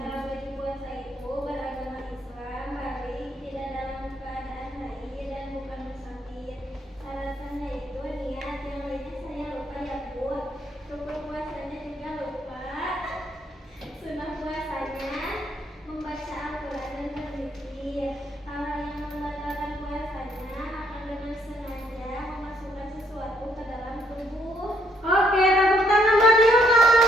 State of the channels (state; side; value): normal; both; correlation 0.69